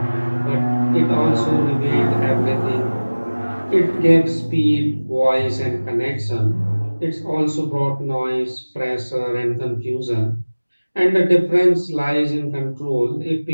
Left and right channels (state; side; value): inverted; both; correlation -1.00